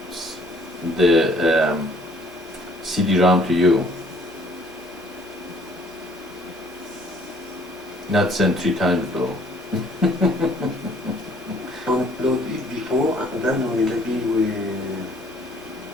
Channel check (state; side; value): normal; both; correlation 0.59